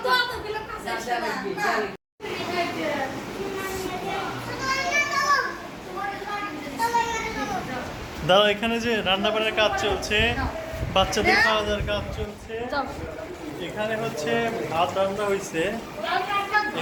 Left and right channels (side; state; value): both; identical; correlation 1.00